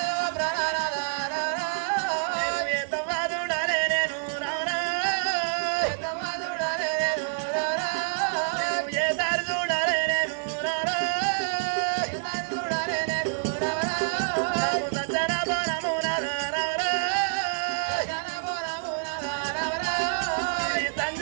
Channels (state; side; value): silent; left; 56 dB below the other